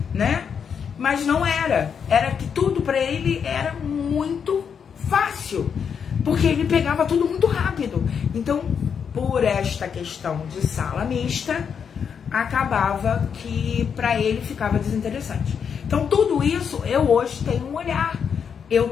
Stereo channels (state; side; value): quieter; right; 7.0 dB